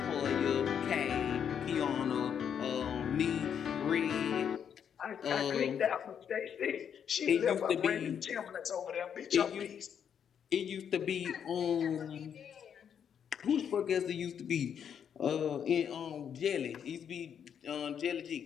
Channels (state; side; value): quieter; right; 8.1 dB